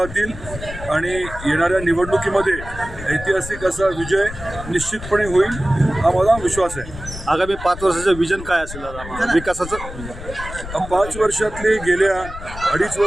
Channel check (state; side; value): noise; left; rumble, 11 dB below the sound